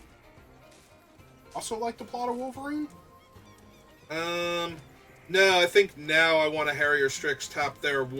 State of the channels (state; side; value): identical; both; correlation 1.00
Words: Also like to plot a Wolverine? No, I think now I want to Harrier Strix tap their